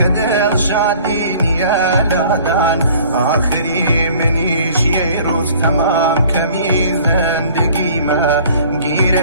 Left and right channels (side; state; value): both; inverted; correlation -0.51